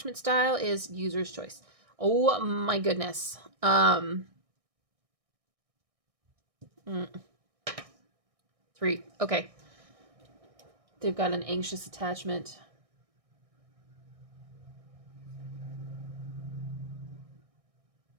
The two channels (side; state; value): left; late; 1.6 ms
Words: style is user's choice. Oh my goodness. 3. Okay. They've got an anxious attachment.